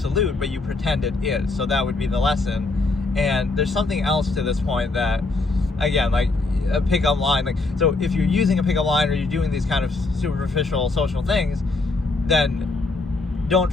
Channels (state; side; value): quieter; right; 3.5 dB